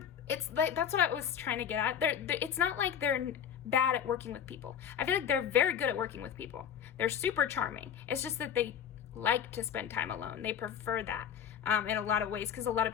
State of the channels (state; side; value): quieter; right; 8.7 dB